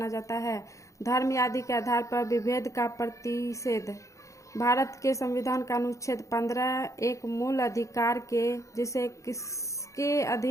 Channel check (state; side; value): late; right; 0.15 ms